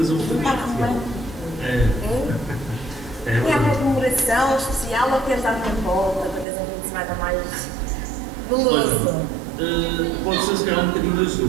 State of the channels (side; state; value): left; drops out; at 6.5 s